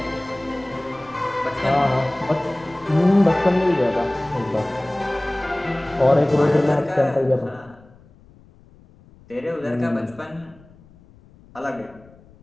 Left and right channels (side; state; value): left; noise; rumble, 26 dB below the sound